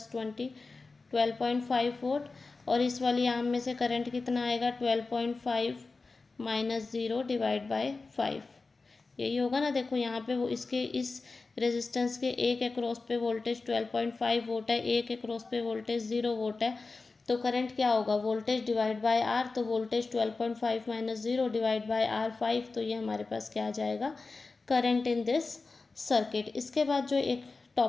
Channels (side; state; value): right; quieter; 3.9 dB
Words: 20 12.5 वोल्ट। और इस वाली आर्म में से करंट कितना आएगा, 12.5 माइनस 0 डिवाइड बाय 5, यही होगा ना। देखो यहाँ पे वो इसके इस रेजिस्टेंस के एक एक्रॉस पे वोल्टेज 12.5 वोल्ट है, एक एक्रॉस पे वोल्टेज 0 वोल्ट है। तो करंट क्या होगा, वोल्टेज डिवाइड बाय आर। तो voltage 12.5 minus 0 divide by R 5, तो ये हमारे पास क्या आ जाएगा, करंट इन दिस सर्किट। इसके बाद जो एक